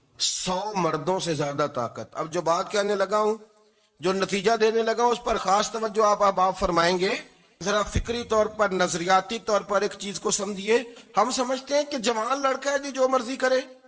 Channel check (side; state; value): both; identical; correlation 1.00